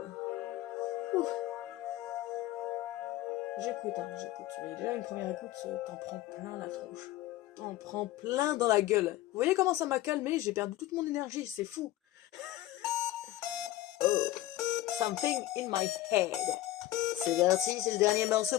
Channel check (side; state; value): right; quieter; 15.3 dB